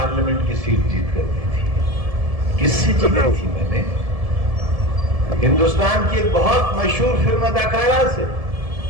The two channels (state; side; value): late; left; 1.7 ms